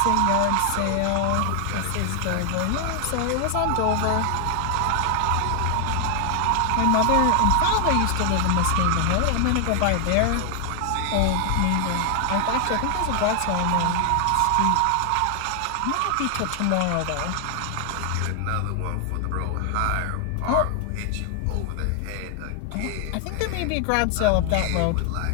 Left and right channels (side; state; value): both; different; correlation 0.00